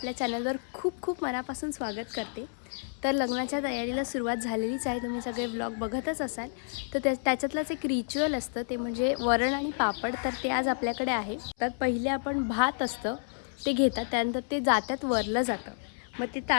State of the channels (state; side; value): silent; right; 58 dB below the other